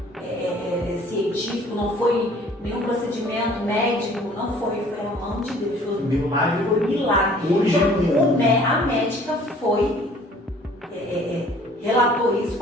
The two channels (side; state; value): both; normal; correlation 0.54